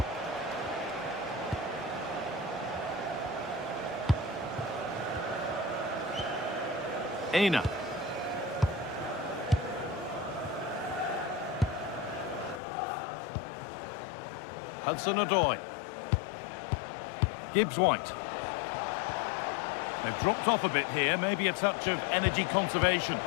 Aina. Hudson-Odoi. Gibbs-White. They've dropped off a bit here, maybe a touch of energy conservation.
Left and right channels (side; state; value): right; drops out; at 12.6 s